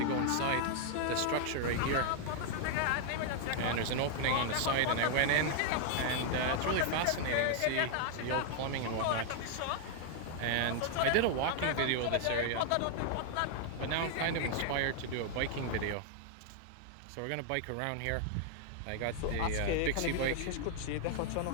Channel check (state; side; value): different; both; correlation 0.00